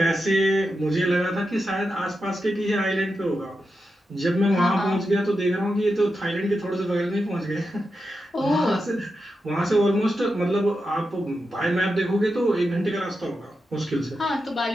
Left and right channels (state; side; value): normal; both; correlation 0.88